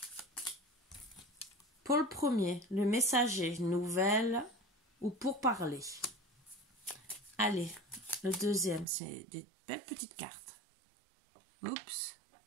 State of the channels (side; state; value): left; drops out; at 8.8 s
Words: Pour le premier, le messager, nouvelle ou pour parler. Allez, le deuxième, c'est des belles petites cartes. Oups.